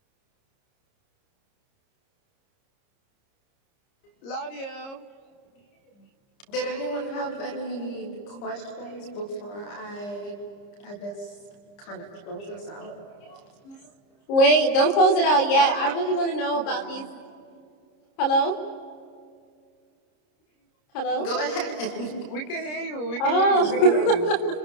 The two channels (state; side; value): late; right; 30 ms